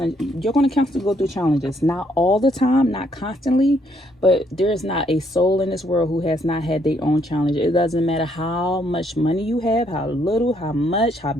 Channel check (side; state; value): both; normal; correlation 0.71